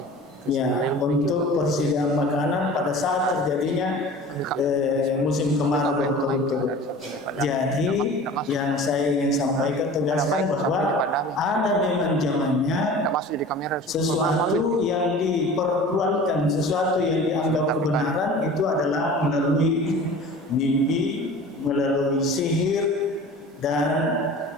ya untuk persediaan makanan pada saat terjadinya musim kemarau berturut-turut. Jadi yang saya ingin sampaikan tegaskan bahwa ada memang zamannya sesuatu yang dipertuankan, sesuatu yang dianggap kebenaran itu adalah melalui mimpi, melalui sihir, dan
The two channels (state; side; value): normal; both; correlation 0.40